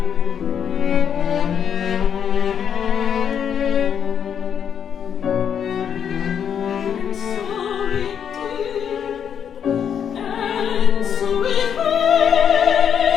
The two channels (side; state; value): right; quieter; 8.2 dB